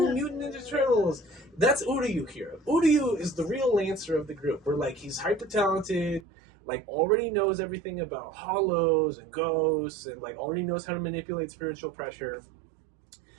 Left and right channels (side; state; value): left; drops out; at 6.2 s